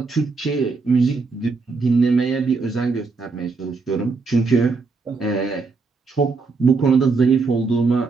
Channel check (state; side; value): quieter; left; 4.2 dB